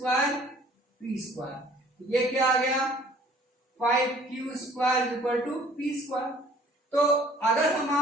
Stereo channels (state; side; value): normal; both; correlation 0.55